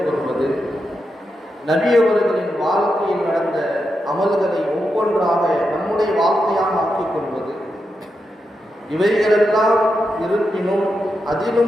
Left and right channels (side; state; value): both; normal; correlation 0.86